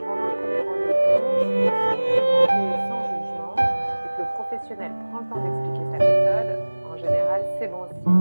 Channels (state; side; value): inverted; both; correlation -1.00